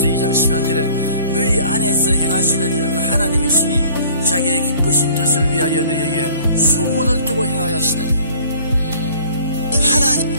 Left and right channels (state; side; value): inverted; both; correlation -0.53